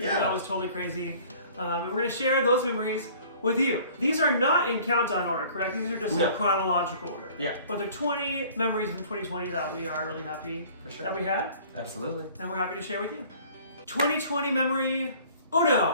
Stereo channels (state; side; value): inverted; both; correlation -0.50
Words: That was totally crazy. And we're gonna share those memories with you. These are not in countdown order, correct? These are just in chronological order. Yeah. But they're 20 memories from 2020 that we are really happy that we had. Absolutely. And we're happy to share with you. 2020 memory